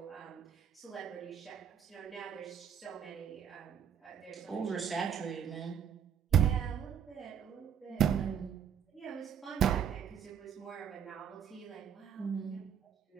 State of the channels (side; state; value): left; quieter; 8.3 dB